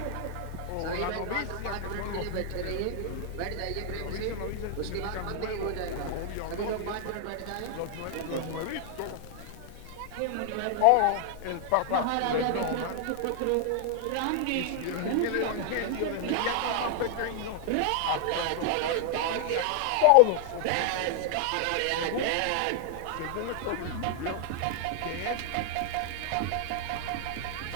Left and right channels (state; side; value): different; both; correlation 0.00